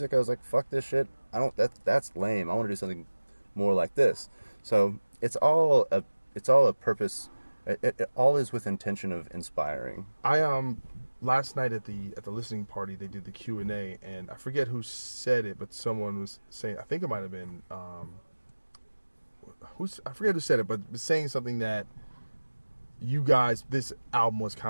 I was like, fuck this shit. That's lame. I want to do something more like this. So it's all a purpose. It all is with intention of inspiring. Last night at the listening party, they did the Q&A, and I forget who said it, but someone was saying, I think it might have been I forget who said it, but was saying something that you guys, this album was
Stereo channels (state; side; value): inverted; both; correlation -1.00